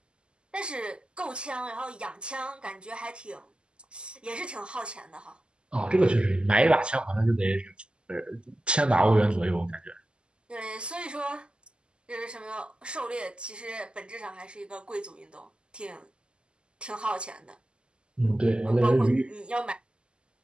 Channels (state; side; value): late; left; 0.050 ms